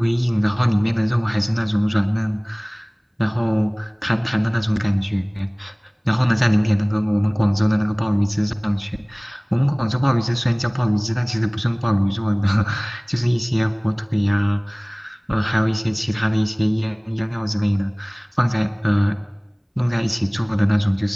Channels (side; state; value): both; identical; correlation 1.00